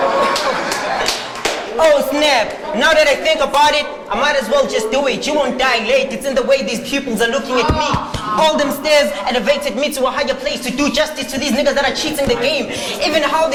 Oh snap. Now that I think about it, I might as well just do it. You won't die late. It's in the way these pupils are looking at me. All them stairs elevated me to a higher place to do justice to these niggas that are cheating the game. Even how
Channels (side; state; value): both; identical; correlation 1.00